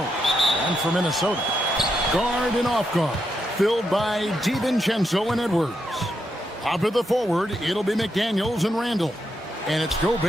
And for Minnesota, guard and off guard, filled by DiVincenzo and Edwards. Up at the forward, it'll be McDaniels and Randall. And it's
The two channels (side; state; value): both; normal; correlation 0.82